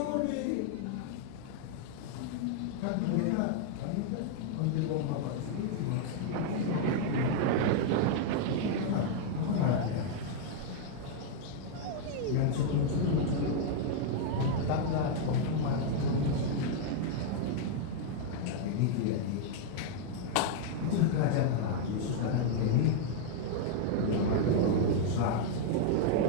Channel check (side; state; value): both; different; correlation -0.01